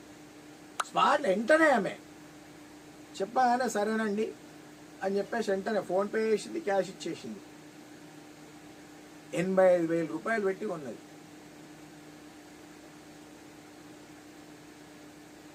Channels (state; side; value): identical; both; correlation 1.00